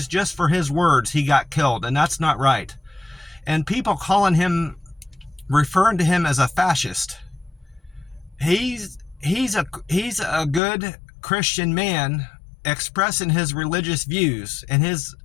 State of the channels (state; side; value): drops out; right; at 10.6 s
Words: Just for his words, he got killed, and that's not right. And people referring to him as a fascist. He's a good Christian man, expressing his religious views and his